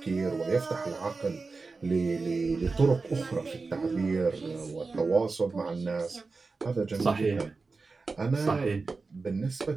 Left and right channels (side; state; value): left; quieter; 4.1 dB